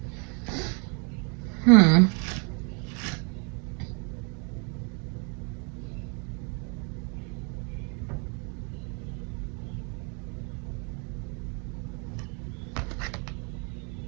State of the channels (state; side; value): quieter; left; 35.6 dB